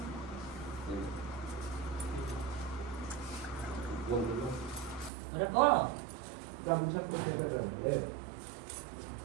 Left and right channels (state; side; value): drops out; left; at 5.1 s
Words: अरे कौन गामछा को है